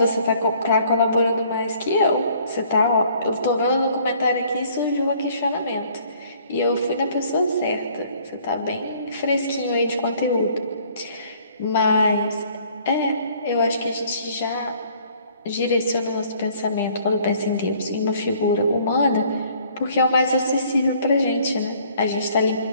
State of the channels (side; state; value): both; inverted; correlation -0.59